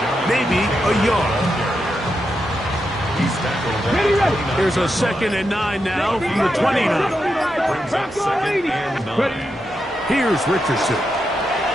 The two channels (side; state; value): both; normal; correlation 0.86